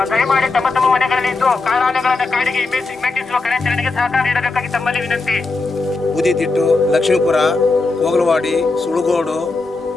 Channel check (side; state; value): right; quieter; 3.7 dB